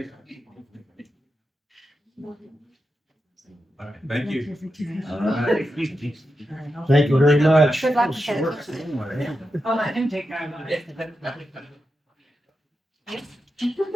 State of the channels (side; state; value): both; normal; correlation 0.89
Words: All right, thank you. All right. Thank you very much. Good luck with it. I'll let him take care of it.